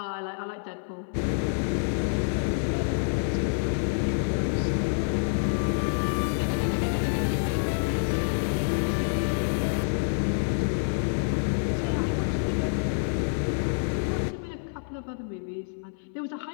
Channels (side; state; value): right; silent; 59 dB below the other